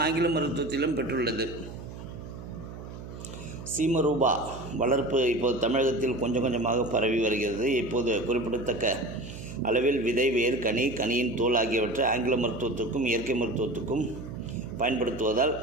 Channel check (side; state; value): right; noise; hum, 12 dB below the sound